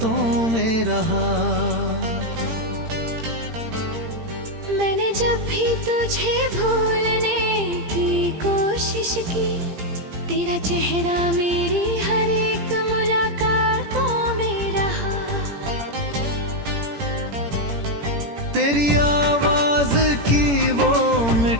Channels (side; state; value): left; late; 17 ms